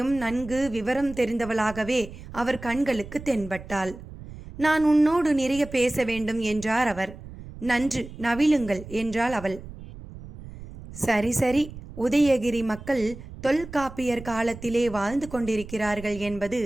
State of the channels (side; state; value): right; noise; rumble, 14 dB below the sound